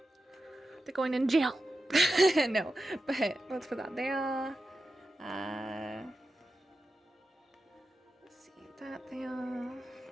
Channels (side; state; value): both; normal; correlation 0.91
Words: They're going in jail. No, but let's put that there. Let's see that there.